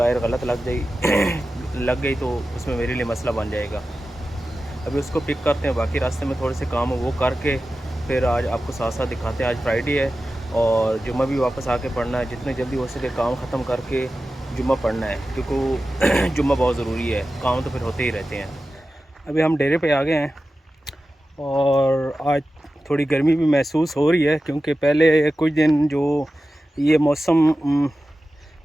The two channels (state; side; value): normal; both; correlation 0.94